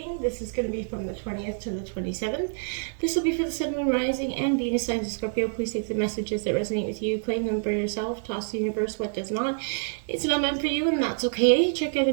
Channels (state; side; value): silent; left; 57 dB below the other